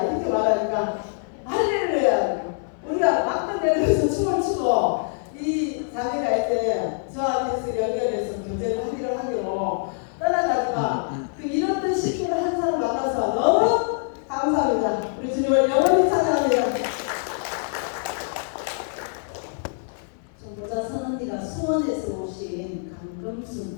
이렇게 말하니까 할렐루야. 우리가 막판 내려서 춤을 추고 이 자매가 이제 저한테 연결해서 교제를 하기로 하기로 떠나가지고 그 이런 식으로 한 사람 만나서 너무 감사합니다. 우리 주님을 영원히 찬양합니다. 전도자 선언니가 수원에서 오신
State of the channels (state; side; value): silent; right; 62 dB below the other